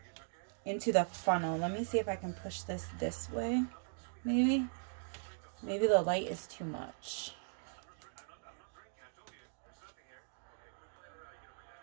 into the funnel. Let me see if I can push this way, maybe. Maybe the light is too much.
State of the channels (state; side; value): silent; left; digital silence